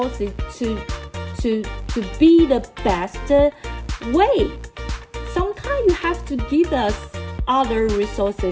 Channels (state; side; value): identical; both; correlation 1.00